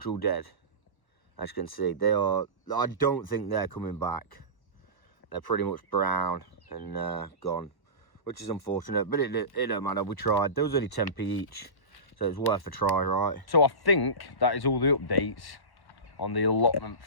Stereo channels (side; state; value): right; late; 1.1 ms